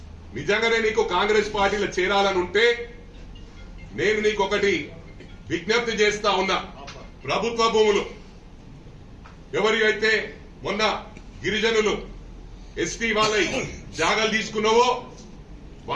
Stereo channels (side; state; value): both; identical; correlation 1.00